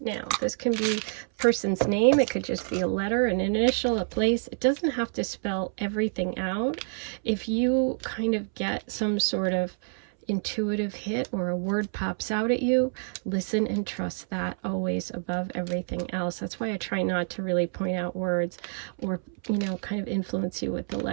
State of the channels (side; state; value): left; silent; 60 dB below the other